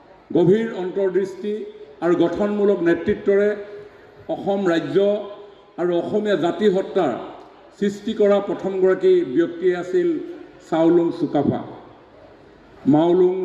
গভীৰ অন্তৰ্দৃষ্টি আৰু গঠনমূলক নেতৃত্বৰে অসম ৰাজ্য আৰু অসমীয়া জাতি সত্তাৰ সৃষ্টি কৰা প্ৰথমগৰাকী ব্যক্তিয়ে আছিল চাওলুং চুকাফা। মাওলুং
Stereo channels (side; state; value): both; identical; correlation 1.00